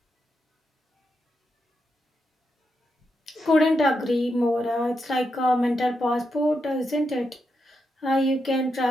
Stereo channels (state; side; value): normal; both; correlation 0.84